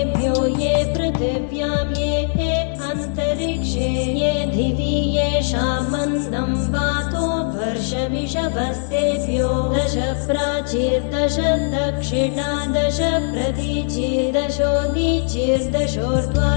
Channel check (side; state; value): right; silent; digital silence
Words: ये पृथिव्यां ये अन्तरिक्षे ये दिवि येषामन्नं वातो वर्षमिषभस्तेभ्यो दश प्राचीर्दश दक्षिणा दश